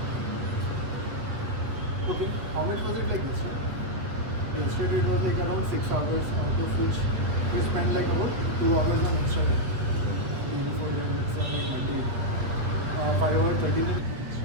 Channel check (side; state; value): left; late; 8.1 ms